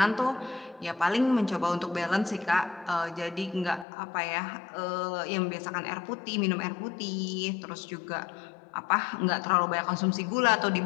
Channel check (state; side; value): drops out; right; at 3.9 s